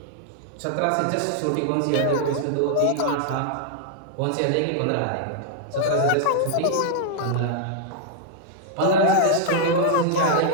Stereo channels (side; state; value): both; different; correlation -0.01